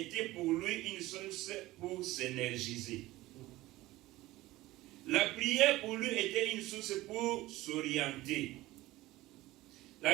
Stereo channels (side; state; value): left; quieter; 17.8 dB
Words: pour lui une source pour s'énergiser. La prière pour lui était une source pour s'orienter.